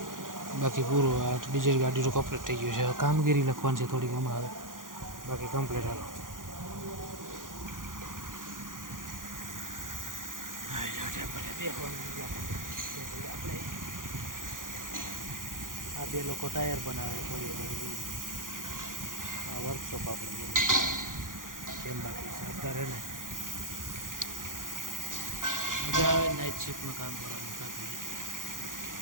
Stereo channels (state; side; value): late; left; 0.89 ms